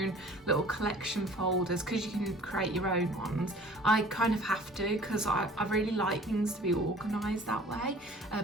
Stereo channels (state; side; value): normal; both; correlation 0.49